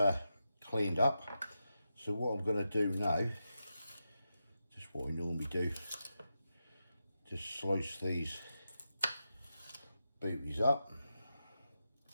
cleaned up. So what I'm going to do now, just what I normally do, just slice these booties up,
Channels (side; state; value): both; inverted; correlation -0.88